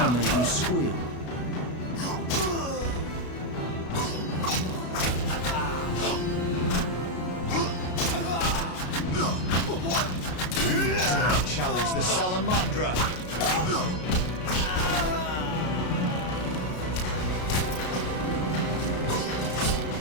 make you squeal. You dare challenge the Salamandra.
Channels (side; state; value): right; late; 33 ms